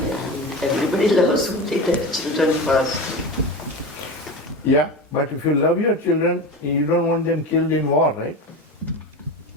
Everybody loves only their children first. Yeah, but if you love your children, you don't want them killed in war, right?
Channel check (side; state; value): both; normal; correlation 0.26